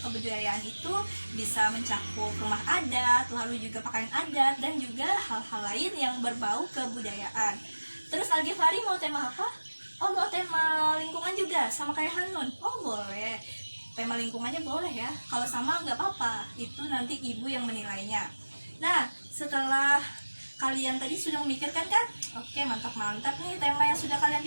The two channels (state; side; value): inverted; both; correlation -1.00